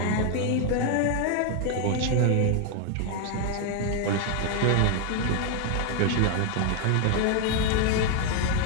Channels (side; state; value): both; different; correlation 0.01